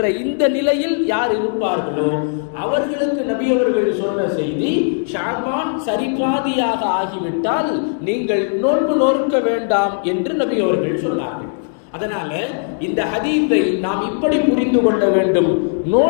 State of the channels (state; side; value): silent; right; digital silence